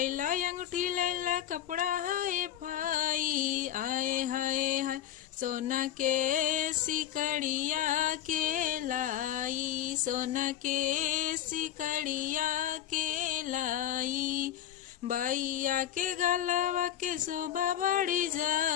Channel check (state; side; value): quieter; right; 11.4 dB